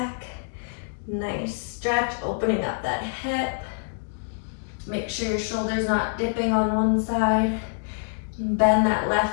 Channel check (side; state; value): right; silent; digital silence